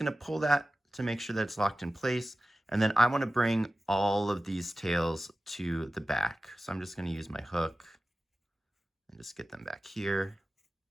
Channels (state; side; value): normal; both; correlation 0.95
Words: to pull that to make sure that it's locked in place. And then I want to bring all of these tails to the back. So I'm just going to use my hook and just get them back here.